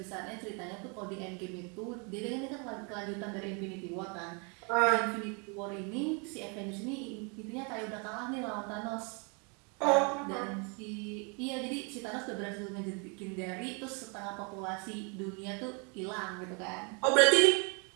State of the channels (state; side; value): quieter; left; 34.7 dB